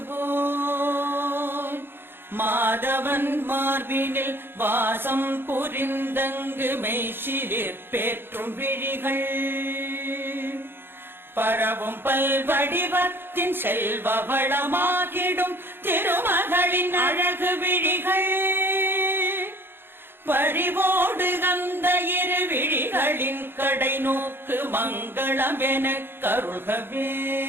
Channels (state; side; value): late; left; 0.10 ms